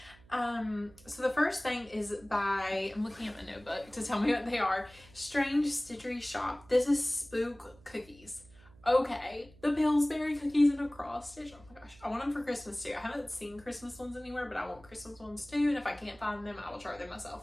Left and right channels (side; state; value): right; noise; hum, 24 dB below the sound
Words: So the first thing is by, I'm looking at my notebook to tell me what they are. Strange Stitchery Shop. This is Spook Cookies. Okay, the Pillsbury cookies in a cross stitch. Oh my gosh, I want them for Christmas too. I haven't seen Christmas ones anywhere, but I want Christmas ones too. And if I can't find them, I will try them